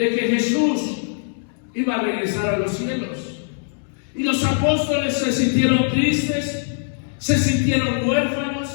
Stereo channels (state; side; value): silent; right; digital silence